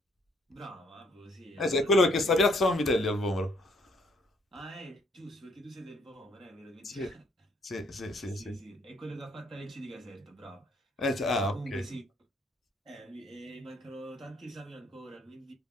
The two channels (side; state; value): both; normal; correlation 0.67